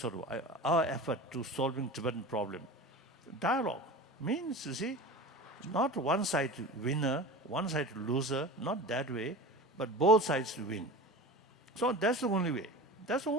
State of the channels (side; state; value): both; normal; correlation 0.33